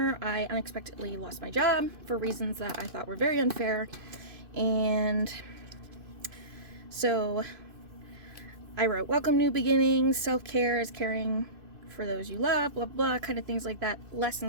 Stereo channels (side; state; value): left; late; 2.5 ms